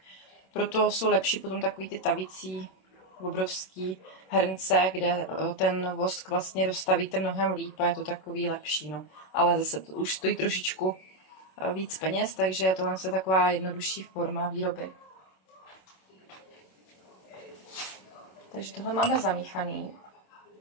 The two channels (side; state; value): right; late; 27 ms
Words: Proto jsou lepší potom takový ty tavící obrovský hrnce, kde ten vosk vlastně rozstavíte mnohem líp a je to takový lepší. No. Ale zase to už stojí trošičku víc peněz, takže tohle je taková jednodušší forma výroby. Takže tohle máme zamíchaný.